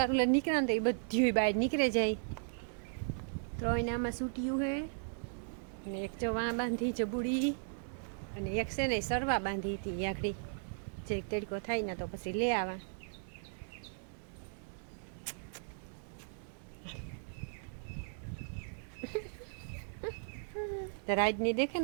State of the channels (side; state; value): left; silent; digital silence